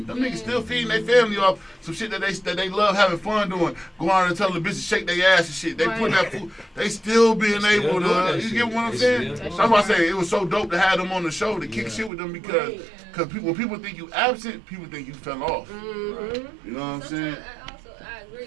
Them niggas still feeding their family off some shit that they love having fun doing. Go out and tell the bitches shake their ass and shit. They put that food. They still being able to. You get what I'm saying? That's why I say it was so dope to have them on the show to kick shit with them because when people think you absent, people think you fell off. Mm-hmm. You know what I'm saying? I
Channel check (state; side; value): drops out; left; at 12.1 s